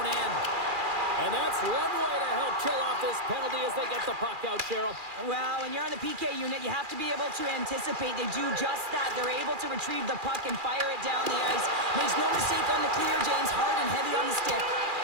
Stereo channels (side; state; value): left; late; 2.4 ms